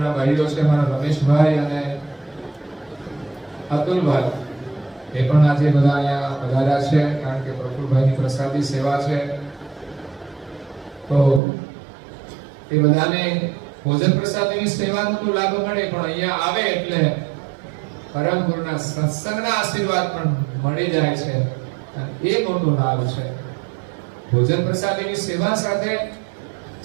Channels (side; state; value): left; drops out; at 11.4 s